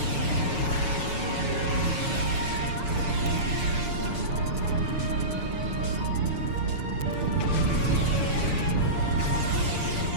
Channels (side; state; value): left; late; 6.8 ms